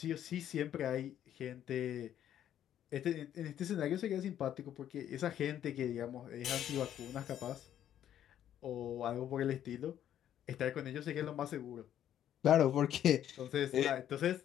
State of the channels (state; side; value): quieter; right; 10.8 dB